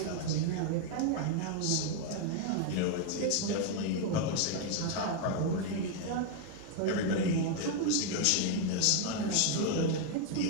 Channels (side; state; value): both; different; correlation 0.01